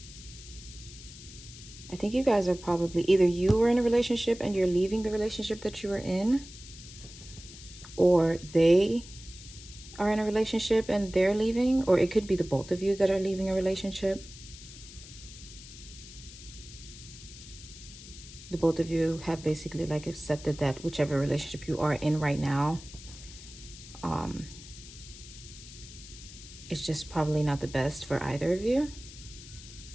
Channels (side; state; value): left; noise; hiss, 16 dB below the sound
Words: you guys are probably, either you were in a relationship and you're leaving the relationship that you were in, or they are in a relationship and they're leaving, or it could be the both of you that are leaving a relationship. The both of you have basically like accepted that whichever relationship you are in right now, it's just probably not the best for either of you.